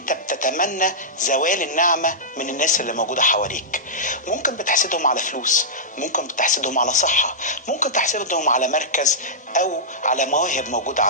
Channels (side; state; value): both; normal; correlation -0.13